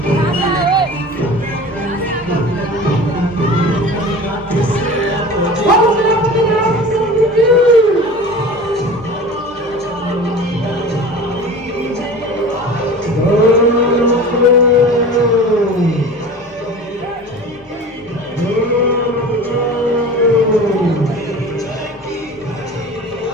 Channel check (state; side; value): normal; both; correlation 0.37